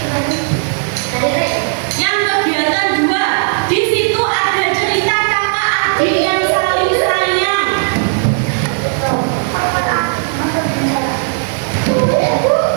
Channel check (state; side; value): silent; left; digital silence